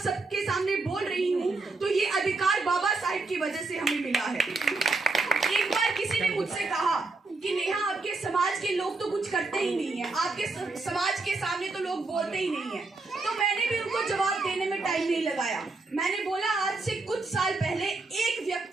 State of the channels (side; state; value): left; quieter; 3.6 dB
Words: सबके सामने बोल रही हूँ तो ये अधिकार बाबा साहिब की वजह से हमें मिला है। एक बार किसी ने मुझसे कहा कि नेहा, आपके समाज के लोग तो कुछ करते ही नहीं है, आपके समाज के सामने तो लोग बोलते ही नहीं है। तो मैंने भी उनको जवाब देने में टाइम नहीं लगाया। मैंने बोला, आज से कुछ साल पहले एक